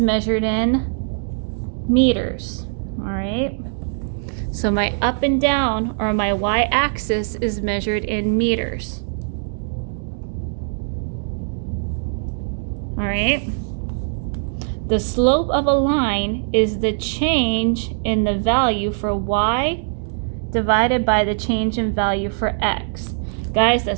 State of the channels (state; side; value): silent; left; digital silence